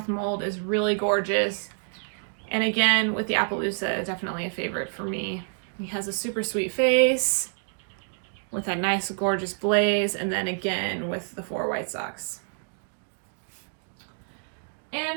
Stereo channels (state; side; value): silent; left; digital silence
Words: mold is really gorgeous, and again, with the Appaloosa, definitely a favorite for me. He has a super sweet face with that nice, gorgeous blaze, and then again with the 4 white socks.